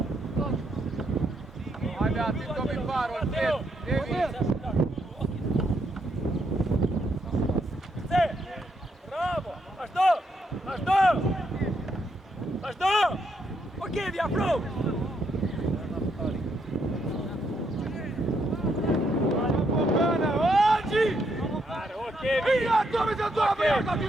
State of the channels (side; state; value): both; normal; correlation 0.76